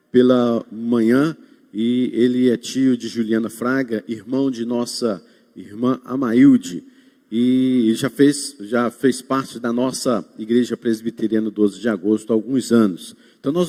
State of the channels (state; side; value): identical; both; correlation 1.00